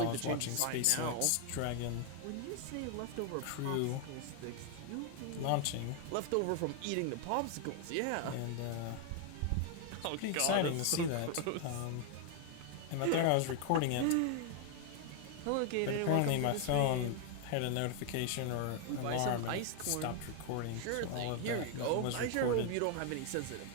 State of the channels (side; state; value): both; different; correlation 0.00